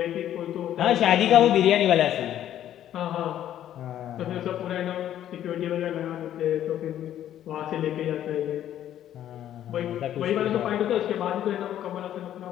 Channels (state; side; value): quieter; right; 11.4 dB